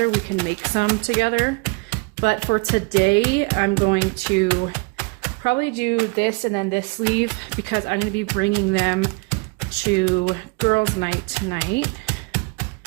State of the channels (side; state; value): left; quieter; 30.0 dB